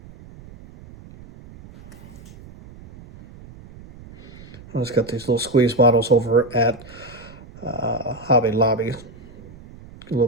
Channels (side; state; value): right; noise; rumble, 19 dB below the sound